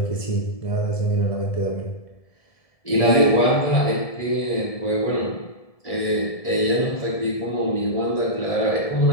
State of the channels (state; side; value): late; right; 1.7 ms